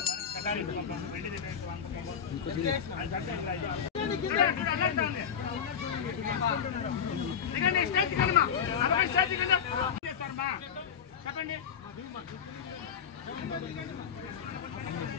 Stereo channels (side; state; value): right; quieter; 7.7 dB